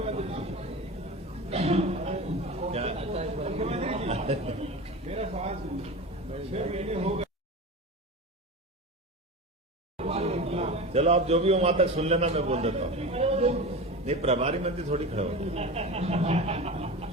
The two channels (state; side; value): normal; both; correlation 0.28